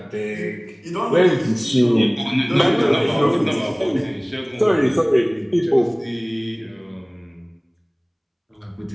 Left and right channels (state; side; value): identical; both; correlation 1.00